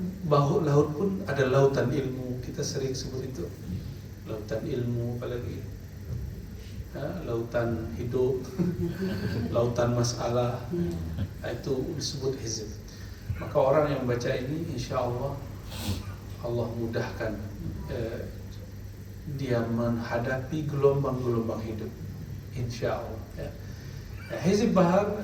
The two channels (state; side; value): identical; both; correlation 1.00